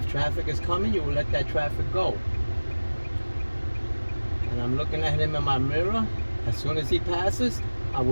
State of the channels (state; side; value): inverted; both; correlation -1.00